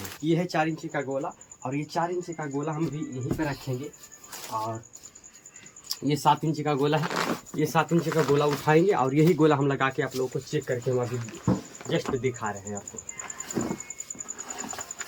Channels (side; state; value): both; identical; correlation 1.00